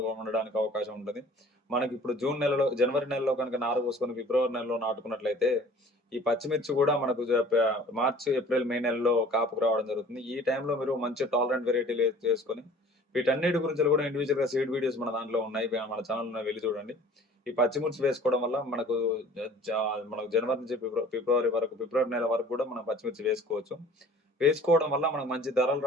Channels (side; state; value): both; normal; correlation 0.48